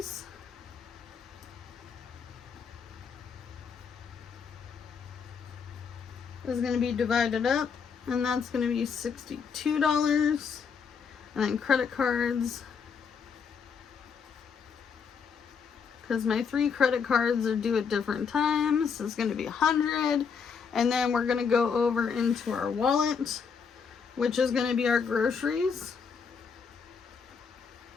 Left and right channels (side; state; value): right; quieter; 6.2 dB